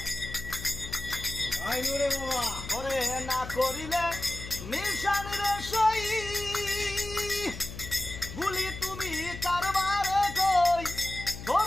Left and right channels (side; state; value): left; noise; hum, 11 dB below the sound